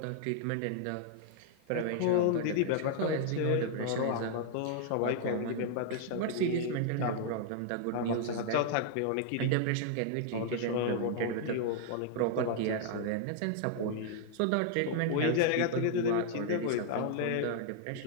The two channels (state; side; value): different; both; correlation -0.01